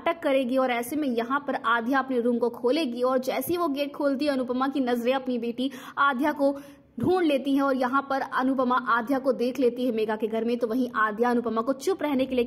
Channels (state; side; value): identical; both; correlation 1.00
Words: करेगी। और ऐसे में यहाँ पर आद्या अपने रूम को खोलेगी और जैसे ही वो गेट खोलती है अनुपमा की नजरें अपनी बेटी आद्या को ढूंढ लेती है और यहाँ पर अनुपमा आद्या को देख लेती है मेघा के घर में। तो वहीं आद्या अनुपमा को चुप रहने के लिए